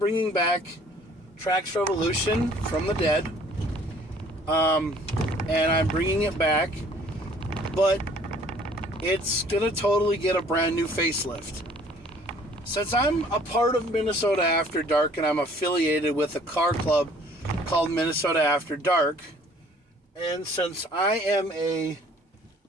back Trax Revolution from the dead, and I'm bringing it back, but it's gonna totally get a brand new facelift. Since I'm a part of Minnesota After Dark and I'm affiliated with a car club called Minnesota After Dark, and since I am a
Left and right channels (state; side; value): normal; both; correlation 0.56